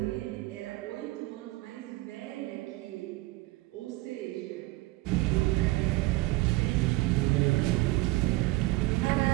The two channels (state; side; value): quieter; left; 20.0 dB